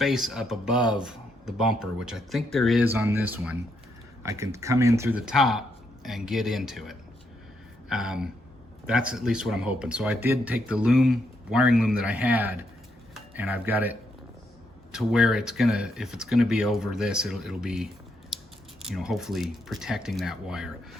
up above the bumper, which I think there is on this one, I can come in through the top and get into it. That's at least what I'm hoping. So I did take the wiring loom that I had, and I've got it to where it's gonna, if it's gonna be over this, it'll be, you know, hopefully protecting that wire.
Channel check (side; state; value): both; normal; correlation 0.78